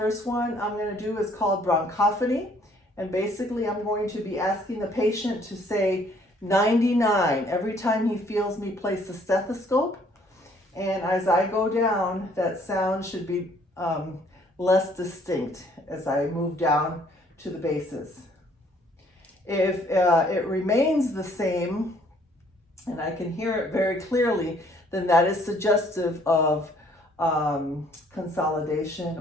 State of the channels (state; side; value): normal; both; correlation 0.62